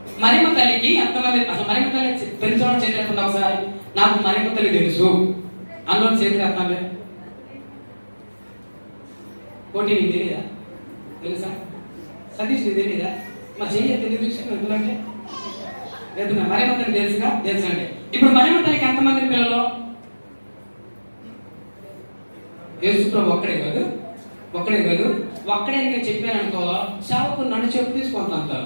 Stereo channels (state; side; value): inverted; both; correlation -1.00